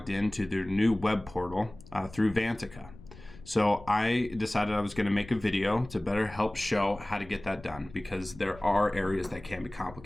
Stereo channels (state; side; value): noise; left; rumble, 19 dB below the sound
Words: into their new web portal through Vantaca. So I decided I was going to make a video to better help show how to get that done, because there are areas that can be